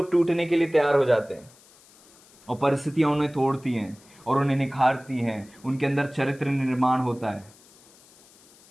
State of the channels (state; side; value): noise; left; hiss, 27 dB below the sound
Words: टूटने के लिए तैयार हो जाते हैं और परिस्थितियां उन्हें तोड़ती हैं और उन्हें निखारती हैं, उनके अंदर चरित्र निर्माण होता है।